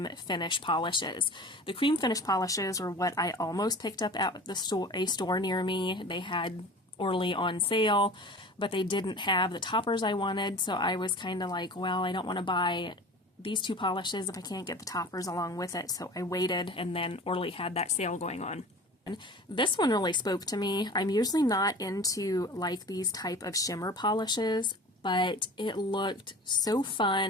finish polishes. The cream finish polishes are what I almost picked up at a store near me. They had Orly on sale, but they didn't have the toppers I wanted, so I was kind of like, well, I don't want to buy these 2 polishes if I can't get the toppers along with it, so I waited, and then Orly had that sale going on. And this one really spoke to me. I'm usually not into like these type of shimmer polishes, but it looked so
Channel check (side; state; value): both; normal; correlation 0.39